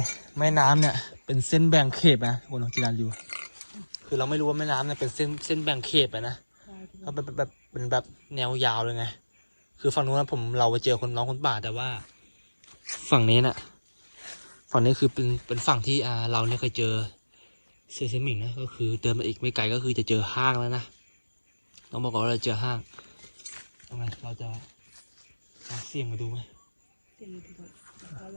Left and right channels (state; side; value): inverted; both; correlation -1.00